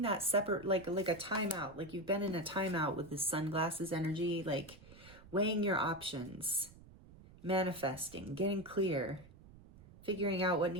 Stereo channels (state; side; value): noise; right; rumble, 21 dB below the sound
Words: that separate, like a timeout. Like you've been in a timeout with this sunglasses energy, like weighing your options, manifesting, getting clear, figuring out what